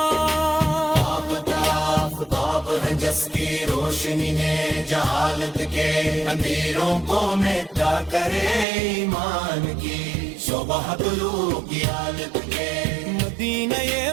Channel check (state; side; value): drops out; left; at 8.7 s